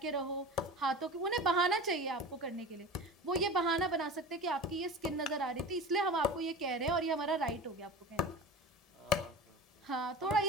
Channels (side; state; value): both; normal; correlation 0.33